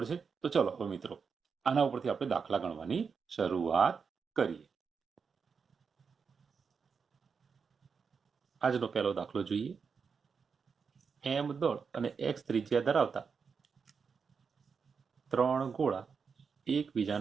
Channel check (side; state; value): left; quieter; 5.8 dB